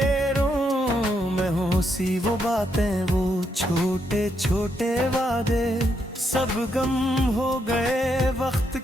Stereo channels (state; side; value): normal; both; correlation 0.78